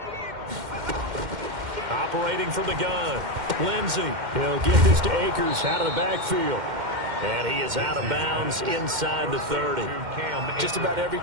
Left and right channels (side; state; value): left; late; 2.1 ms